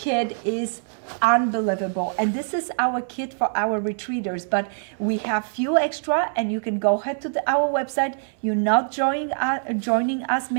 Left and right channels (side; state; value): left; silent; 63 dB below the other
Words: is unbelievable, and this is our kit for our retreaters, but we have few extra, and you can go ahead to our website. You're not joining us